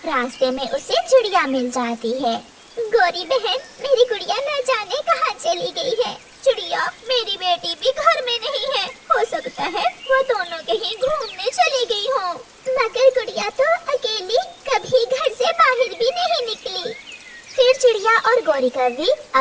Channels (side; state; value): both; identical; correlation 1.00